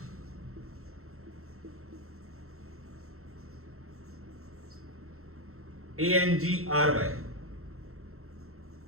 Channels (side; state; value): left; late; 0.63 ms